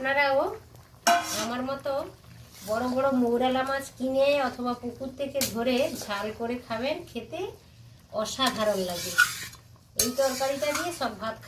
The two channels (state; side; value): identical; both; correlation 1.00